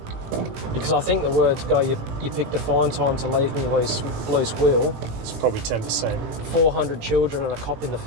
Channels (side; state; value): left; late; 18 ms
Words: Because I think the words go, you picked a fine time to leave me loose wheel, It's probably 10%. 400 children and a cop in the